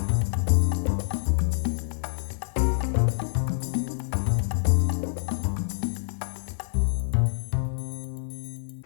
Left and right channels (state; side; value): silent; right; digital silence